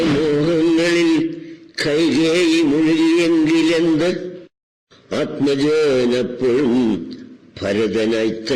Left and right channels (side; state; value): both; identical; correlation 1.00